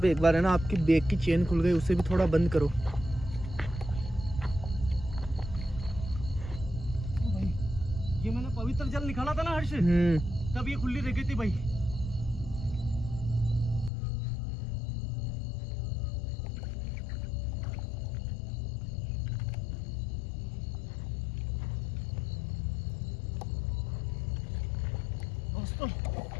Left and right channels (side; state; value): right; drops out; at 13.9 s